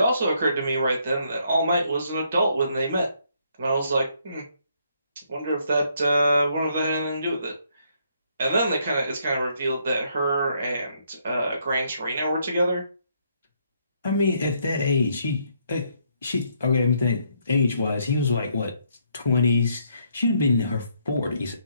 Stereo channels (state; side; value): inverted; both; correlation -0.71